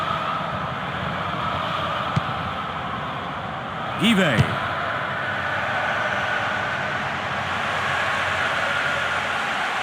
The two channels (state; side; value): identical; both; correlation 1.00